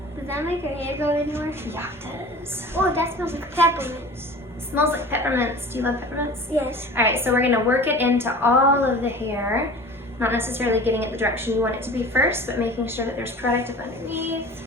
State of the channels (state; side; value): normal; both; correlation 0.40